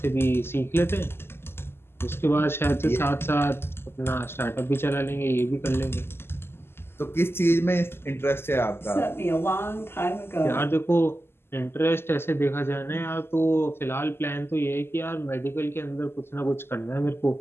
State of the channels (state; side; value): late; right; 0.12 ms